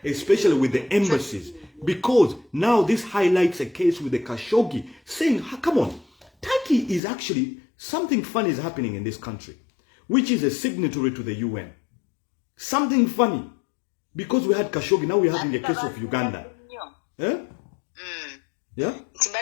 especially with the embassies. Because now this highlights a case with the Khashoggi saying, come on, Turkey is actually something funny is happening in this country, which is a signatory to the UN. Something funny. Because we had Khashoggi, now we're having a case of Uganda. Eh? Yeah?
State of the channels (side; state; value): right; drops out; at 7.0 s